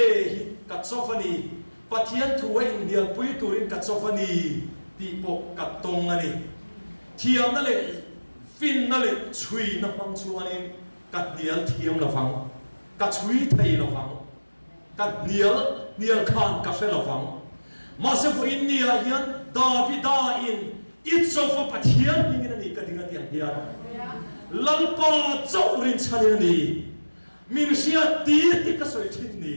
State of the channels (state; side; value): inverted; both; correlation -1.00